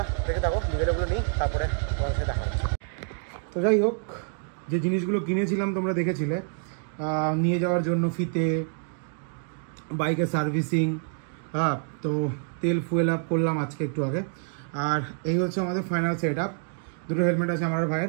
দেখে থাকো, বিকেলেগুলো নিই, তারপরে তোমার সাথে দেখা হচ্ছে। তো যাই হোক, যে জিনিসগুলো কিনেছিলাম তোমরা দেখেছিলে নিয়ে যাওয়ার জন্য, ফিতে, বাইকের সার্ভিসিং, হ্যাঁ, তো তেল ফুয়েল আপ করলাম আজকে একটু আগে। আর এই হচ্ছে আমাদের ফাইনাল সেট আপ। দুটো হেলমেট আছে আমার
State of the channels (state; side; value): silent; left; 57 dB below the other